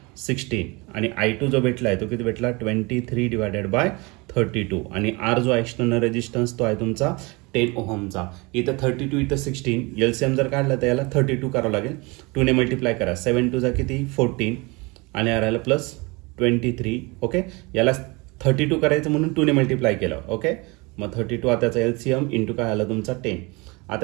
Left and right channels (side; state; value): left; quieter; 26.3 dB